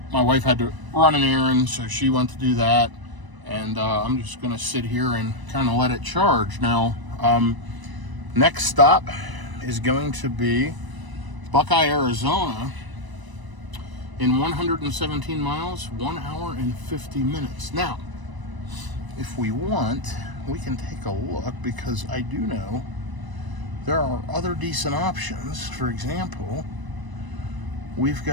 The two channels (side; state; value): left; late; 1.0 ms